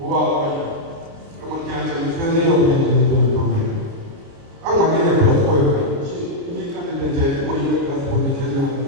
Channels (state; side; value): late; left; 29 ms